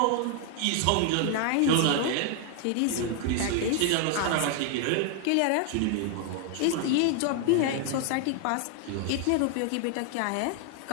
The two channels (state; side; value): different; both; correlation 0.00